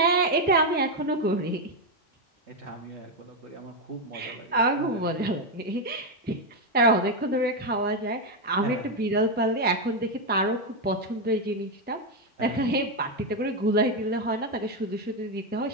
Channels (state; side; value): normal; both; correlation 0.05